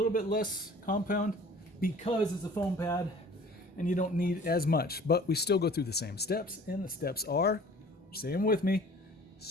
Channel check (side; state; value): both; normal; correlation 0.48